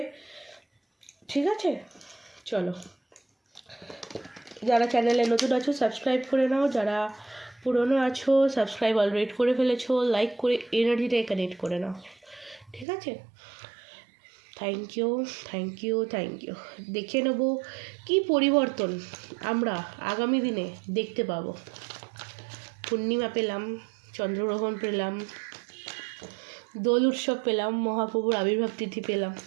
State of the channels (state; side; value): drops out; left; at 12.9 s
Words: ঠিক আছে? চলো, যারা চ্যানেলে নতুন আছো সাবস্ক্রাইব করে নাও, যারা পুরনো আছো সাবস্ক্রাইব অলরেডি করে ফেলেছো, লাইক করে এনার্জিটাই কানেক্ট করে নাও, ঠিক আছে? Thank you, thank you, thank you. দেখে নেব কী পরিবর্তন আমরা আগামী দিনে দেখতে পাবো। পূর্ণিমা পেলাম, চন্দ্রগ্রহণ পেলাম, দোল উৎসব পেলাম, মহাপ্রভুর আবির্ভাব তিথি পেলাম।